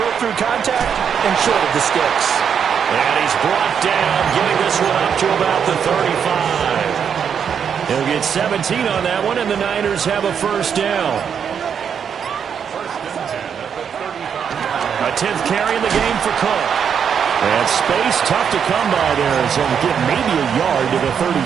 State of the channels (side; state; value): left; quieter; 7.5 dB